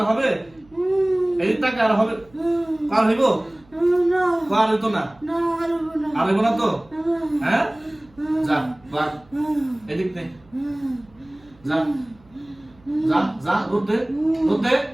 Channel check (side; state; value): right; noise; hum, 29 dB below the sound